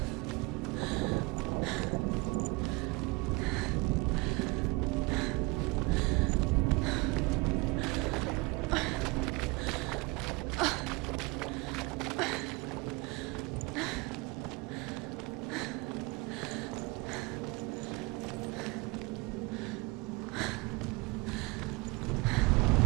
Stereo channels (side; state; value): left; quieter; 25.4 dB